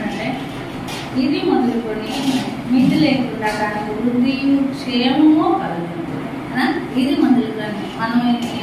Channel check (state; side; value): identical; both; correlation 1.00